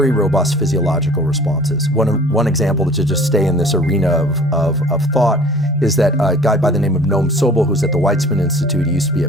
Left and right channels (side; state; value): both; normal; correlation 0.48